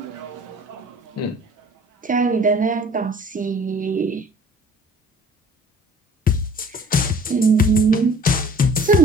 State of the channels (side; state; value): both; normal; correlation 0.50